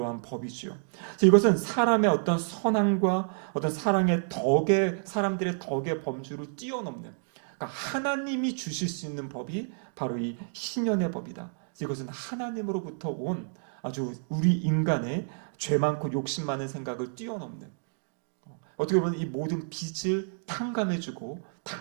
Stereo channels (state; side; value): silent; left; digital silence